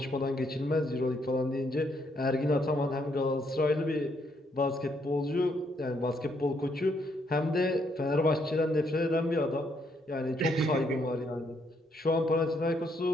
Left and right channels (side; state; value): both; normal; correlation 0.73